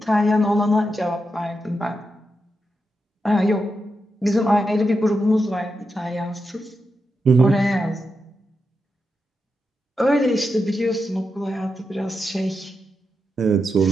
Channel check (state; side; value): normal; both; correlation 0.87